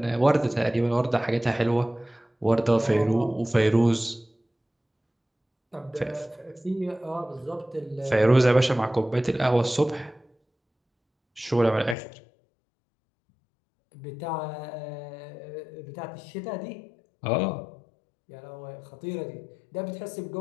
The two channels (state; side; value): drops out; right; at 12.0 s